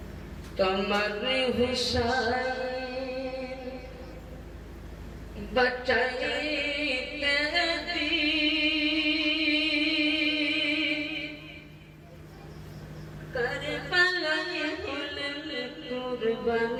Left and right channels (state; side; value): identical; both; correlation 1.00